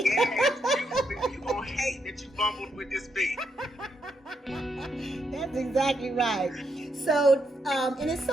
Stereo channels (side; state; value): both; normal; correlation 0.79